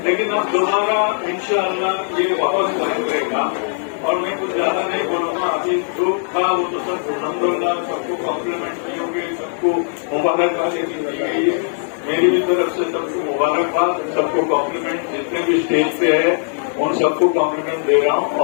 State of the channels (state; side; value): silent; right; digital silence